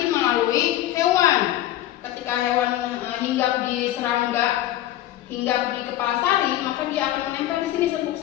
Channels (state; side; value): quieter; right; 13.8 dB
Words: melalui hewan. Ketika hewan hinggap di serangga, hinggap di kepala sari, maka dia akan menempel di sini serbuk